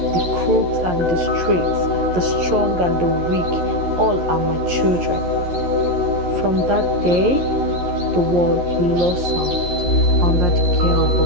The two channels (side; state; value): left; late; 11 ms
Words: The crooks and the straights, the strong and the weak, all are my children. From that day, the world blossomed under the care of